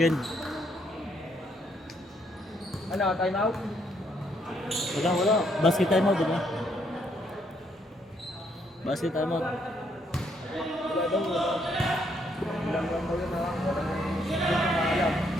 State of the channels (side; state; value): both; normal; correlation 0.72